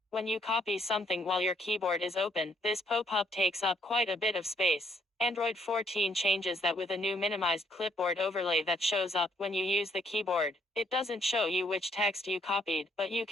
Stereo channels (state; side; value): normal; both; correlation 0.69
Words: When you copy something while your keyboard is open, this pop-up takes up quite a bit of space. Android 14 changes that with a new minimized clipboard overlay that shows up when you use the keyboard. It doesn't show you which text you copied, but you